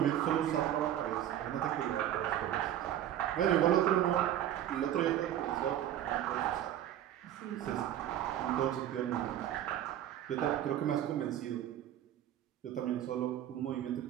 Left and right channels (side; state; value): left; quieter; 11.5 dB